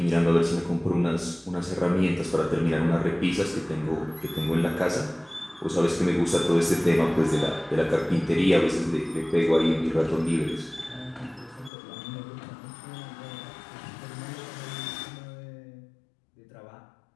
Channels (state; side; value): drops out; right; at 11.7 s